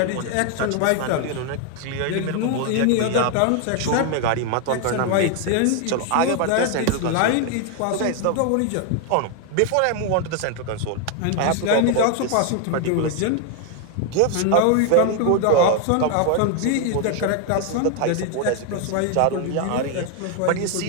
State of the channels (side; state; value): both; different; correlation 0.01